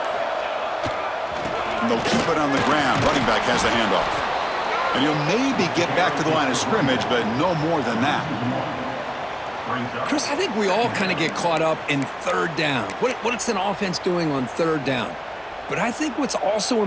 And they'll keep it on the ground. Running back has the handoff. And he'll maybe get back to the line of scrimmage, but no more than that. Chris, I think we all kind of get caught up in third down. What's an offense doing on third down? But I think what's also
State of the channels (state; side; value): identical; both; correlation 1.00